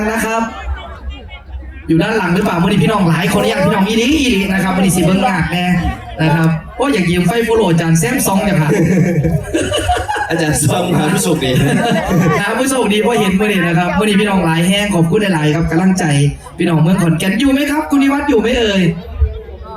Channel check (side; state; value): both; identical; correlation 1.00